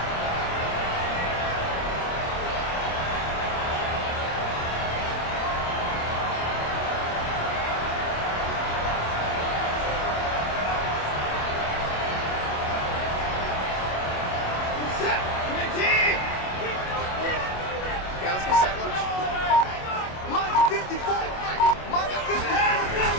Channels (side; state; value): right; late; 27 ms